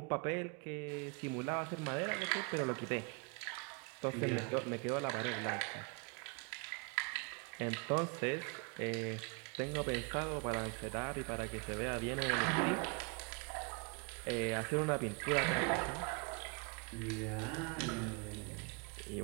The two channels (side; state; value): left; quieter; 32.1 dB